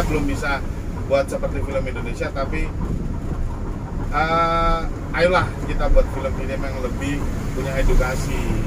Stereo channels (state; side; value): identical; both; correlation 1.00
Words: belum bisa buat seperti film Indonesia, tapi ayolah kita buat film ini yang lebih punya edukasi,